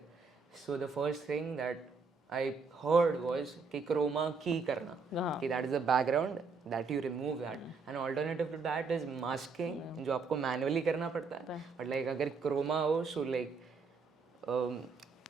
so the first thing that I heard was कि क्रोमा की करना, कि that is the background that you remove that, and alternative to that is masking जो आपको मैनुअली करना पड़ता है, बट लाइक अगर क्रोमा हो सो लाइक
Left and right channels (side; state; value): left; quieter; 4.7 dB